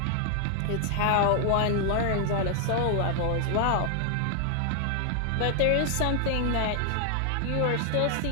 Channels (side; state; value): both; different; correlation 0.00